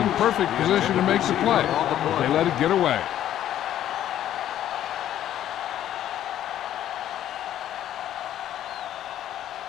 perfect position to make the play. They let it get away.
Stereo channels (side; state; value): right; quieter; 11.7 dB